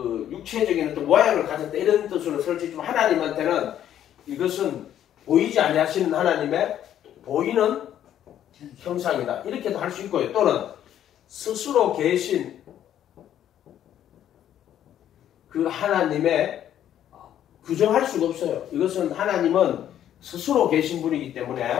육체적인 어떤 모양을 가졌다. 이런 뜻으로 설치지만 하나님한테는 이것은 보이지 아니하시는 하나님의 보이는 형상이다. 이렇게도 할 수 있고요. 또는 스스로 계신 그 하나님의 규정할 수가 없어요. 이것은 하나님은 스스로 계신 분이기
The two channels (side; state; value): right; quieter; 10.8 dB